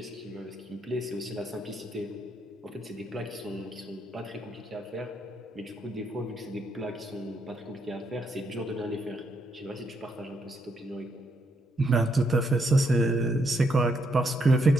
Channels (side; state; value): both; normal; correlation 0.76